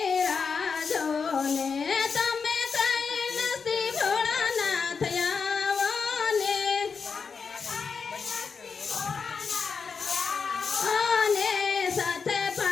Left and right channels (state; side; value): quieter; right; 5.5 dB